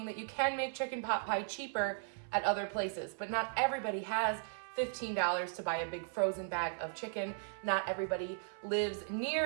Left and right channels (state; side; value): silent; left; 53 dB below the other